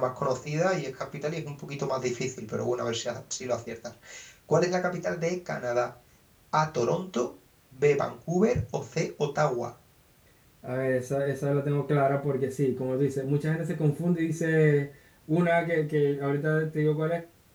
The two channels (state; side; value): identical; both; correlation 1.00